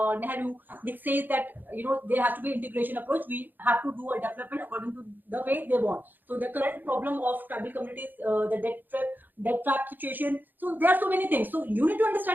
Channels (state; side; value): late; left; 0.089 ms